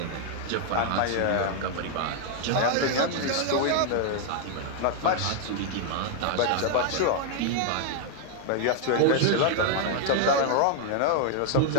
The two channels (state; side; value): different; both; correlation 0.00